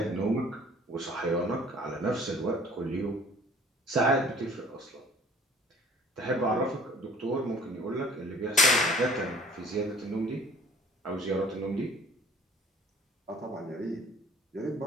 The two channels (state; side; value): normal; both; correlation 0.51